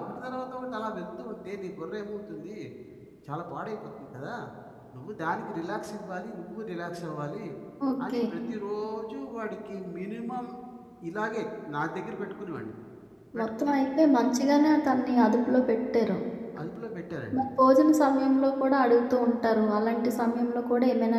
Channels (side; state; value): both; identical; correlation 1.00